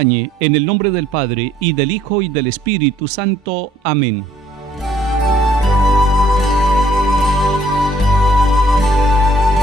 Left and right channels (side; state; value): both; normal; correlation 0.63